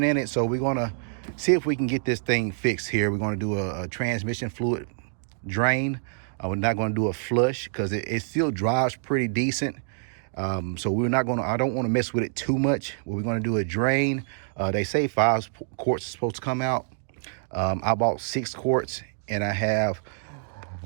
in it. So we're going to see if we can get this thing fixed here. We're going to do a transmission fluid drain. We're not going to do a flush because it still drives pretty decent. So we're not going to, I don't want to mess with it too much. We're going to do a drain. They say 5 quarts are supposed to come out. I bought 6 quarts and I have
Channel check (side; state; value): left; silent; digital silence